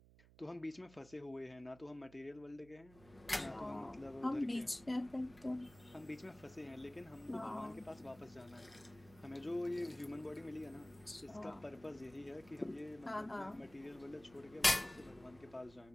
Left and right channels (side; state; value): right; noise; hum, 22 dB below the sound